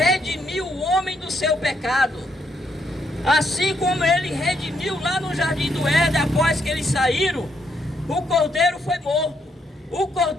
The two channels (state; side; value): normal; both; correlation 0.75